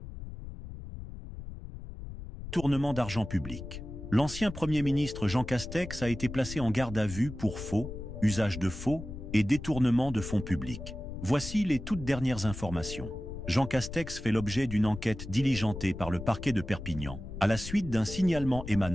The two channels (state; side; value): noise; left; rumble, 10 dB below the sound